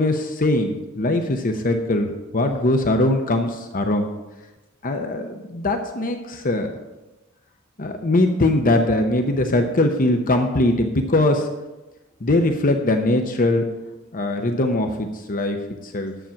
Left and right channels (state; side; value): normal; both; correlation 0.49